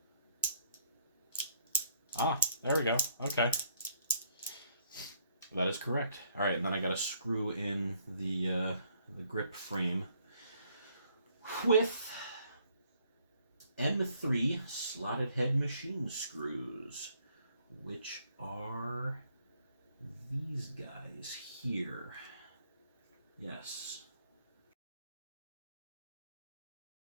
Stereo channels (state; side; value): inverted; both; correlation -0.66